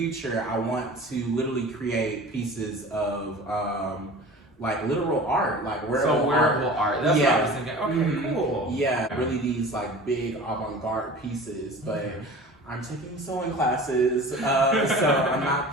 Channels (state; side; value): normal; both; correlation 0.39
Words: I want to literally create pieces of like literal art, like wearable art. That's what I was thinking. Okay, cool. Yeah, really these like big avant-garde pieces, but I'm taking sewing classes, so I'm not